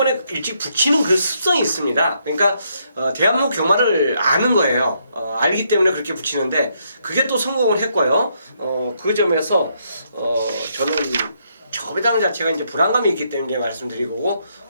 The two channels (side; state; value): both; inverted; correlation -0.74